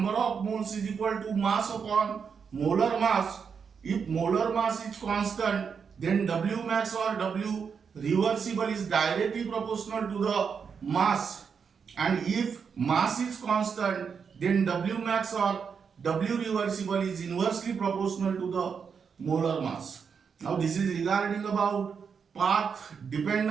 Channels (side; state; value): left; quieter; 6.3 dB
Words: of moles, is equal to mass upon molar mass. If molar mass is constant, then W max or W reversible is directly proportional to the mass. And if mass is constant, then W max or W reversible is inversely proportional to the molar mass. Now this is regarding about path